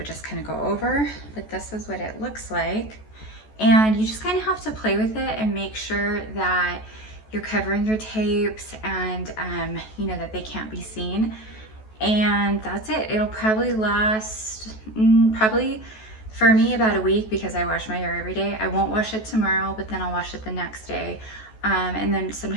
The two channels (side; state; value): right; late; 14 ms